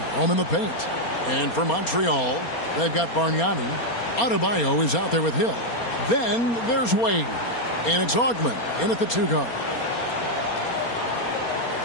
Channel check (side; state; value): right; late; 4.3 ms